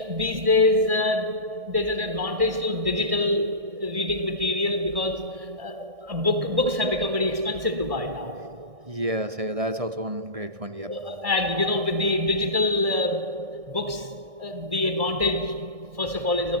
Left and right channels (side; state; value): left; late; 1.6 ms